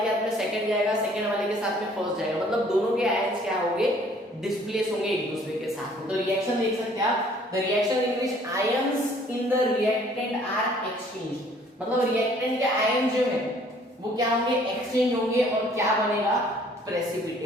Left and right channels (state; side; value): normal; both; correlation 0.58